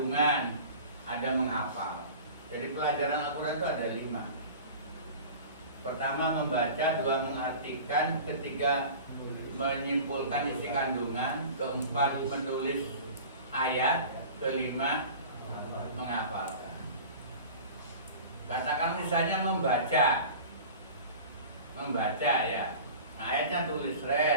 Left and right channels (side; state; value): both; inverted; correlation -0.38